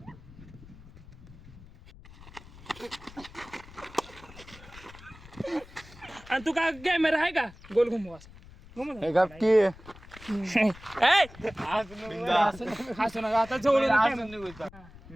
आणि तू काय कॅमेरा आहे का गोल घुमवा हसू नका आता जवळ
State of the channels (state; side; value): noise; left; rumble, 19 dB below the sound